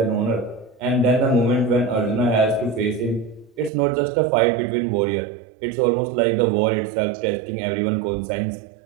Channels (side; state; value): left; drops out; at 3.7 s